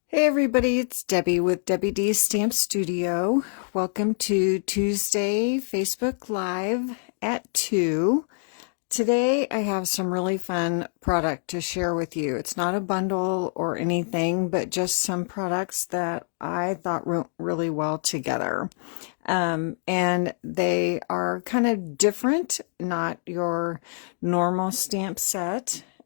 Hey everybody, it's Debbie with Debbie D's Stamp Studio. Welcome to Tuesday Facebook Live at 2. Today I have some really fun product to share with you. It's not a bundle or anything, but just some products that I thought went really well together. And they are kind of different, not your normal stamp set.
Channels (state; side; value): silent; right; 61 dB below the other